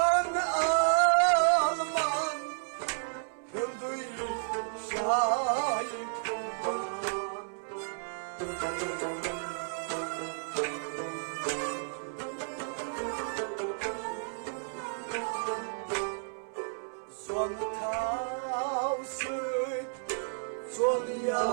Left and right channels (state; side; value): silent; left; 56 dB below the other